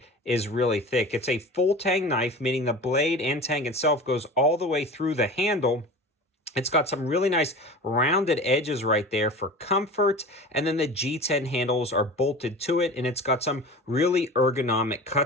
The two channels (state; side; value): normal; both; correlation 0.35